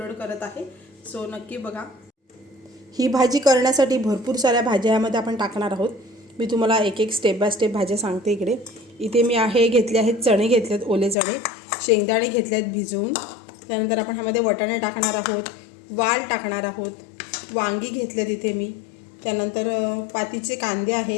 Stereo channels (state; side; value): drops out; right; at 11.2 s